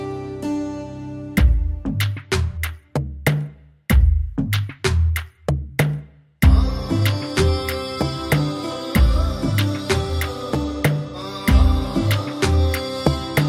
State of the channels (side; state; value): both; identical; correlation 1.00